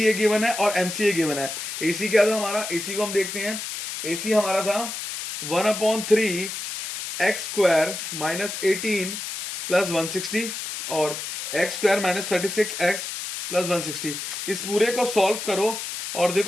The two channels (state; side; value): noise; left; hiss, 6 dB below the sound